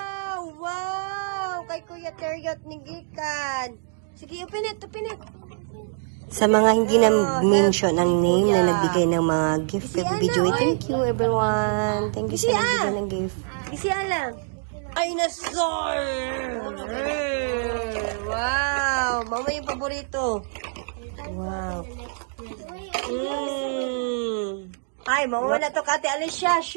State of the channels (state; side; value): silent; left; digital silence